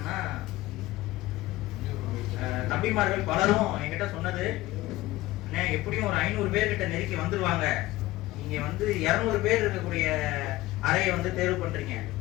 தம்பிமார்கள் பலரும் என்கிட்ட சொன்னது, எப்படியும் ஒரு 500 பேர் கிட்ட நெருக்கி வந்துருவாங்க, நீங்க 200 பேர் இருக்கக்கூடிய அறையை தேர்வு பண்றீங்க,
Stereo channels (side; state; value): right; quieter; 17.7 dB